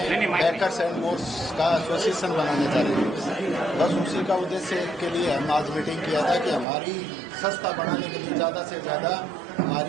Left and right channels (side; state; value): left; drops out; at 6.7 s